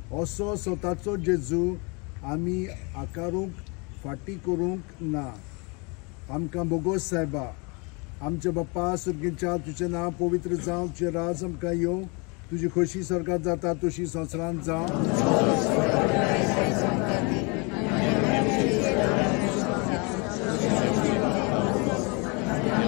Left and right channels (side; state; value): right; quieter; 30.9 dB